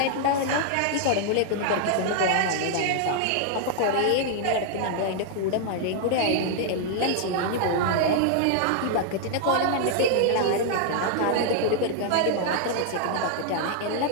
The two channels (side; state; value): both; different; correlation -0.01